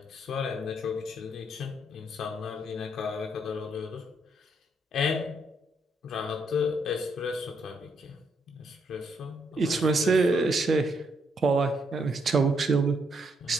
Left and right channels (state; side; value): normal; both; correlation 0.75